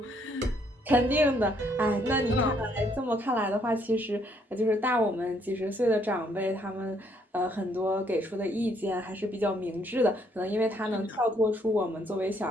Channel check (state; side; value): normal; both; correlation 0.69